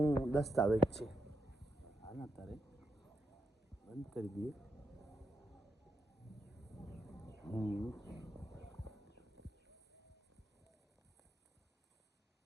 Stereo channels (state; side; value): normal; both; correlation 0.83